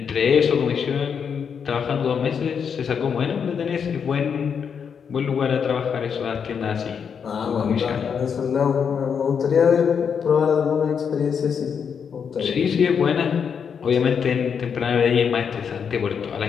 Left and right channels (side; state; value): right; quieter; 6.9 dB